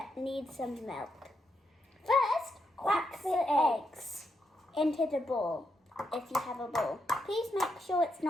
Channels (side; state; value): both; normal; correlation 0.82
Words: need some milk. First, crack the eggs into the bowl, if you have a bowl. Please make sure it's